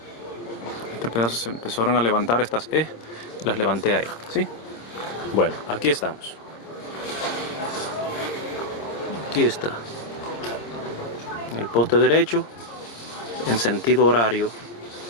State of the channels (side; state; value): right; late; 26 ms